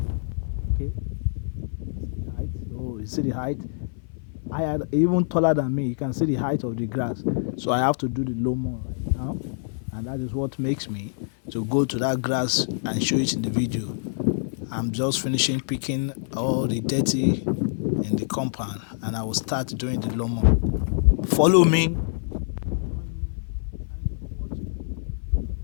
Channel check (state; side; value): silent; right; 57 dB below the other